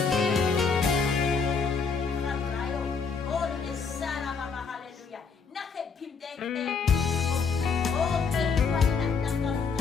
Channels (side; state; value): right; quieter; 5.4 dB